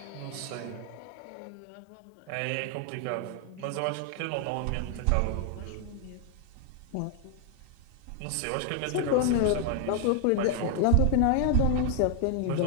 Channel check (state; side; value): different; both; correlation 0.00